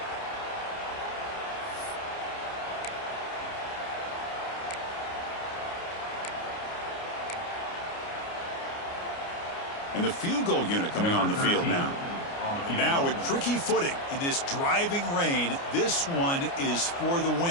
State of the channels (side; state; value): right; late; 29 ms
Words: And the field goal unit coming on the field now. Now with tricky footing in this driving rain, this one is for the